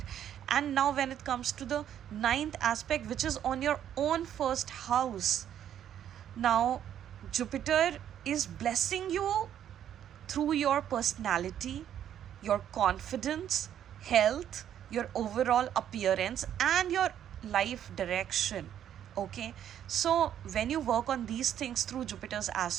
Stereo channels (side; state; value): left; quieter; 10.2 dB